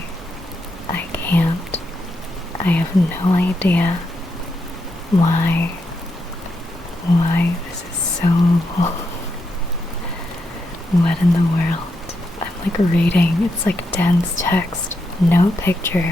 can't. I have no idea why this is so what in the world? I'm like reading, it's like dense text, no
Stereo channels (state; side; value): normal; both; correlation 0.82